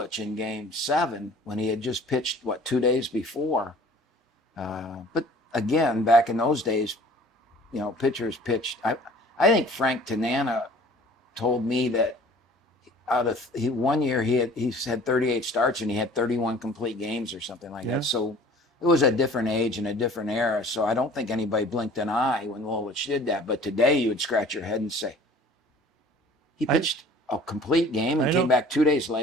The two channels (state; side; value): normal; both; correlation 0.48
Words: in Game 7, when he had just pitched 2 days before, but again, back in those days, pitchers pitched. I think Frank Tanana told me that one year he had 38 starts and he had 31 complete games or something like that. So it was a different age and a different era. So I don't think anybody blinked an eye when Lolich did that. But today you would scratch your head and say, he pitched a complete game and came back 2 days